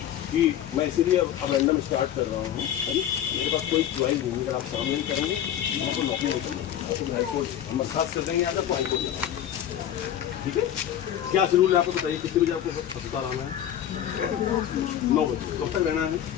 कि मैं इसीलिए अब रैंडम स्टार्ट कर रहा हूँ। मेरे पास कोई च्वाइस नहीं, अगर आप काम नहीं करेंगे मैं तो नौकरी नहीं करूँगा, तो हाईकोर्ट हम बर्खास्त कर देंगे आगे तो हाईकोर्ट जाना। ठीक है, क्या शेड्यूल है आपको बताइए, कितने बजे आपको अस्पताल आना है? 9 बजे। कब तक रहना है?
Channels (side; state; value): right; quieter; 10.6 dB